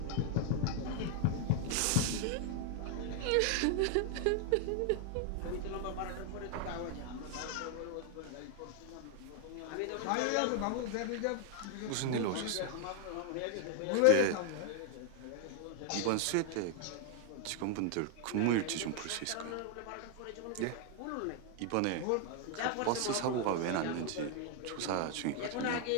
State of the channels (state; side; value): different; both; correlation 0.00